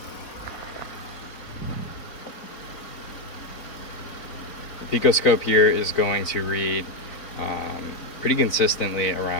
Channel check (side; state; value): right; late; 4.0 ms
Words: The picoscope here is going to read pretty consistently